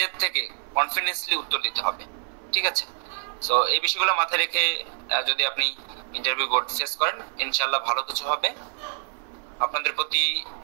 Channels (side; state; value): left; silent; 58 dB below the other